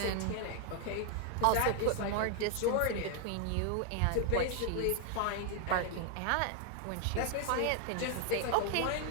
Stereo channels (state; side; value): different; both; correlation 0.00